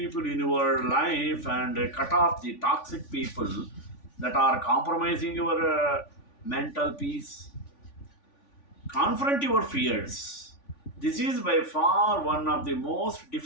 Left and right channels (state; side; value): late; right; 3.5 ms